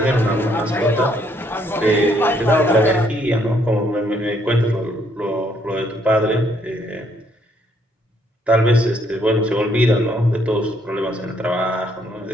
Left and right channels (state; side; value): normal; both; correlation 0.69